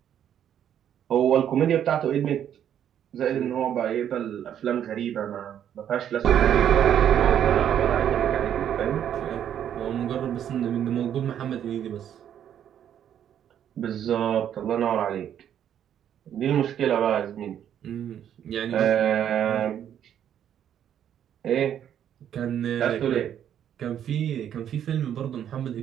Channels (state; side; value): quieter; left; 9.8 dB